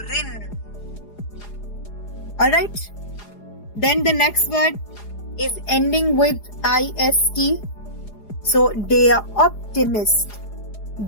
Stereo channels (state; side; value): late; right; 4.8 ms